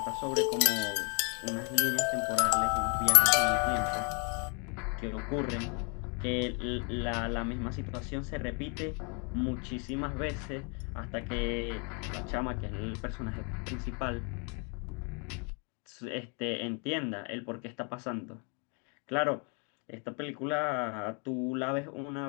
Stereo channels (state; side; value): quieter; right; 37.3 dB